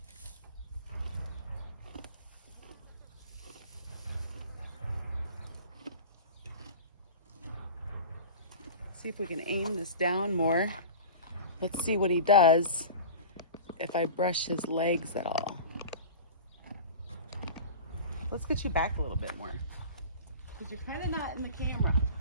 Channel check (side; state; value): both; inverted; correlation -0.36